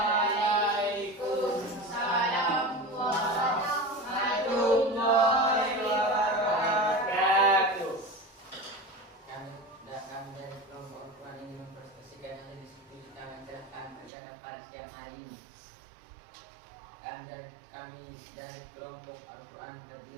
warahmatullahi wabarakatuh. Kami dari kelompok Al-Quran ingin mempresentasikan yang diskusi kami mencerahkan pada pada siang hari ini. Kami dari kelompok Al-Quran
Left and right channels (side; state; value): left; drops out; at 14.1 s